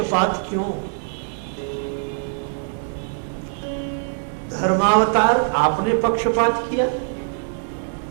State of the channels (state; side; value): silent; left; 61 dB below the other